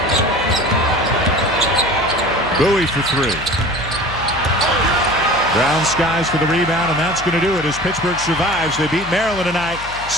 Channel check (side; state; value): left; noise; hum, 15 dB below the sound